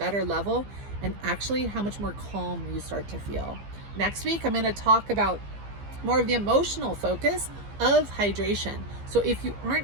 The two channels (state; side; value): late; left; 15 ms